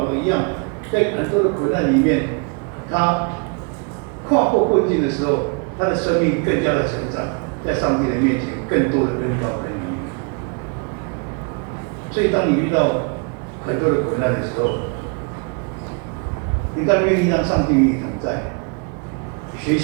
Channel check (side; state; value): left; quieter; 35.8 dB